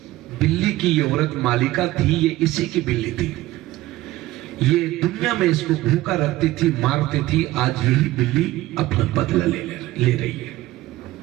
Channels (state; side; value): quieter; left; 16.8 dB